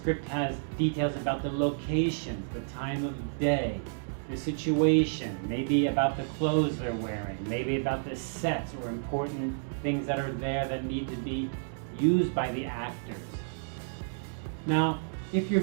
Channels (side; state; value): left; silent; digital silence